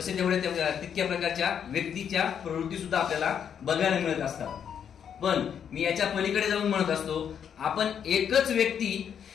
तेवढ्या तितक्या प्रकारच्या व्यक्तीच्या प्रवृत्ती सुद्धा आपल्याला बघायला मिळत असतात. पण मी याच्या पलीकडे जाऊन म्हणत असतो, आपण एकच व्यक्ती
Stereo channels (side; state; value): right; quieter; 8.2 dB